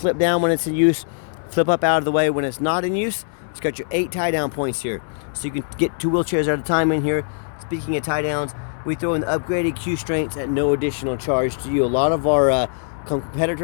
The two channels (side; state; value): right; silent; 64 dB below the other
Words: down when it's in use, flip up out of the way when it's not in use. It's got your 8 tie down points here. So you can get 2 wheelchairs at a time in here. Speaking of tie downs, we throw in the upgraded Q strengths at no additional charge to you. A lot of our